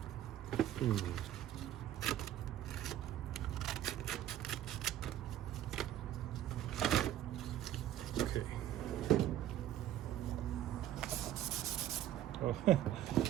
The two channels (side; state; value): left; quieter; 12.2 dB